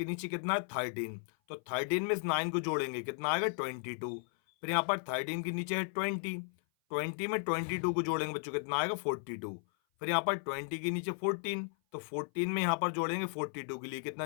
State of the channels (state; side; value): silent; right; 54 dB below the other